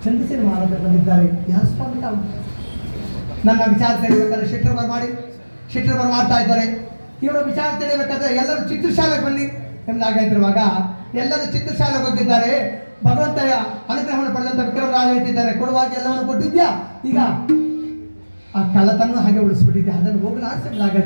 ಚಂದ್ರಸೇನ ಮಹಾರಾಜ ಬಂದಿದ್ದಾರೆ. ಯಾರು ಸ್ವಾಮಿ ತಾವು ನನ್ನ ವಿಚಾರ ತಿಳಿಬೇಕಾದ್ರೆ ಶೆಟ್ಟರ್ ಬರ ಮಾಡ್ತಾ ಇದ್ದಾರೆ. ಇವರ ವಿಚಾರ ತಿಳಿಬೇಕಾದ್ರೆ ಎಲ್ಲರೂ ಚಿತ್ರಶಾಲೆಗೆ ಬನ್ನಿ ಎಂಬುದಾಗಿರುವಾಗ ಎಲ್ಲರೂ ಚಿತ್ರಶಾಲೆಗೆ ಹೋಗಿದ್ದಾರೆ. ಭಗವಂತಯ ಅನುಗ್ರಹವನ್ನು ಪಡೆದಂತ ವಿಕ್ರಮರಾಜ ಹೇಳ್ತಿದ್ದಾರೆ, ಕೊಡುವಾಗ ಎಲ್ಲವನ್ನು ಕೊಟ್ಟಿದ್ಯಾ, ಈಗ ಆ ಕಳ್ಳತನ ಹಾಗೆ ಉಳಿಸ್ಬಿಟ್ಟಿದ್ದೆ, ಅದನ್ನು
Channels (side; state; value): both; inverted; correlation -1.00